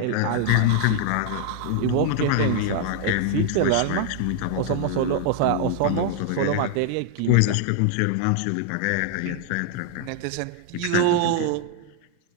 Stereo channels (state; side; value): different; both; correlation 0.00